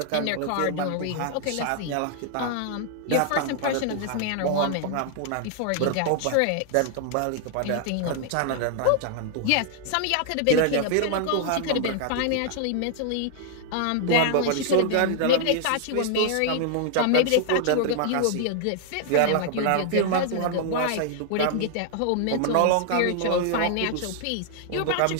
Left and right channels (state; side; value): different; both; correlation 0.00